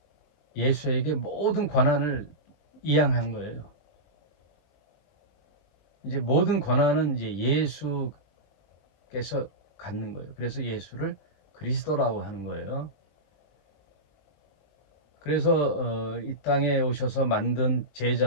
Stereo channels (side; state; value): right; late; 20 ms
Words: 예수에게 모든 권한을 이양한 거예요. 이제 모든 권한은 이제 예수께서 갖는 거예요. 그래서 예수를 그리스도라고 하는 거예요. 그래서 이 땅에 오셔서 만든